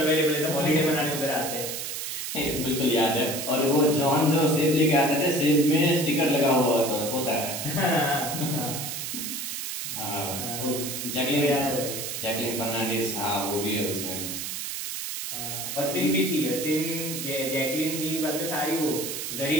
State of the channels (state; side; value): noise; right; hiss, 5 dB below the sound